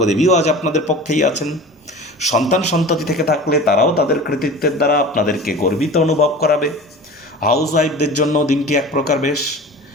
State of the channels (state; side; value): normal; both; correlation 0.37